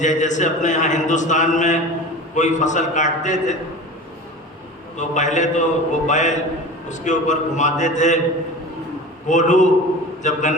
اپنے یہاں ہندوستان میں کوئی فصل کاٹتے تھے تو پہلے تو وہ بیل اس کے اوپر گھماتے تھے، کولو جب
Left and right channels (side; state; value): both; normal; correlation 0.35